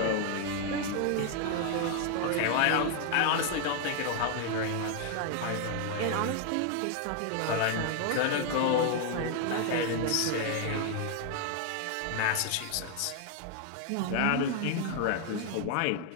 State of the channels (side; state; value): both; different; correlation 0.00